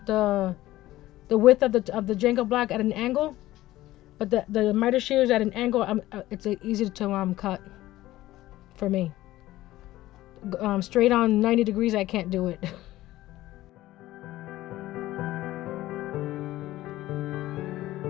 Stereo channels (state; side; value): quieter; right; 16.0 dB